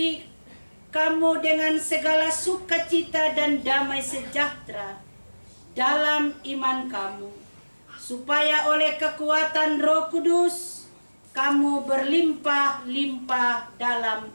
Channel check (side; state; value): both; inverted; correlation -1.00